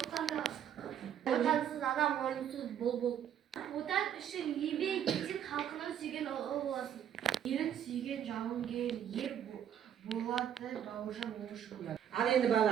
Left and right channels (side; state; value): left; quieter; 9.6 dB